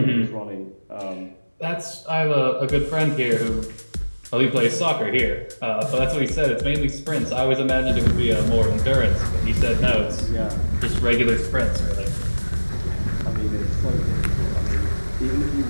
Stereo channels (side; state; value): both; inverted; correlation -1.00